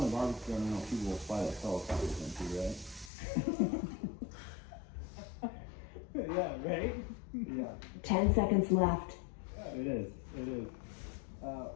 barbecue I know people will fly like helicopters into, right? Yeah, right? Yeah. 10 seconds left. It is. It is.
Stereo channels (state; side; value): drops out; right; at 3.1 s